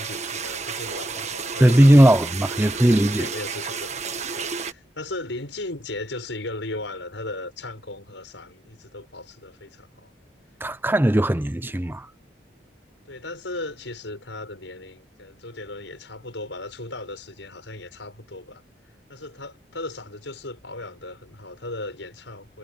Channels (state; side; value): normal; both; correlation 0.84